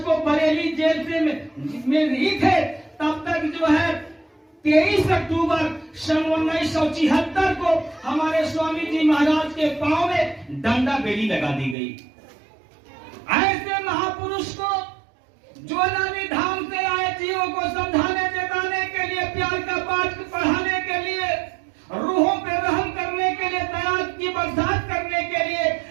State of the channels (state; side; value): drops out; left; at 11.8 s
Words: को बरेली जेल से में ही थे, तब तक जो है 23 अक्टूबर सन 1976 को हमारे स्वामी जी महाराज के पांव में डंडा बेड़ी लगा दी गई। ऐसे महापुरुष को, जो नानी धाम से आए जीवों को समझाने जताने के लिए, प्यार का पाठ पढ़ाने के लिए, रूहों पे रहम करने के लिए, दया की बरसात करने के लिए,